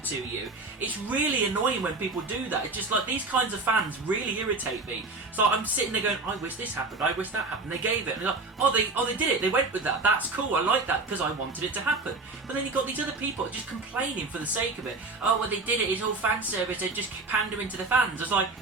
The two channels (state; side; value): quieter; left; 3.5 dB